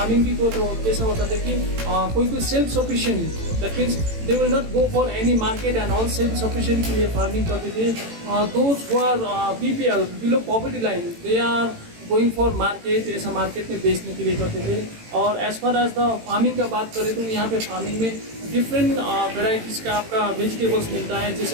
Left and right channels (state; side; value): late; left; 18 ms